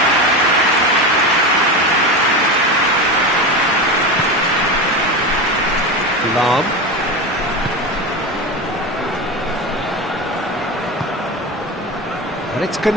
Lam. And it's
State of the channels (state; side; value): normal; both; correlation 0.22